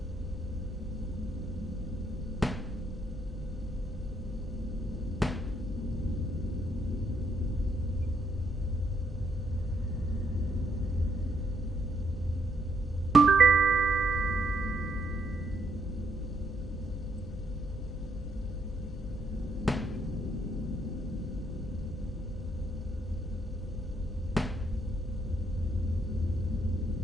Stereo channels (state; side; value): normal; both; correlation 0.73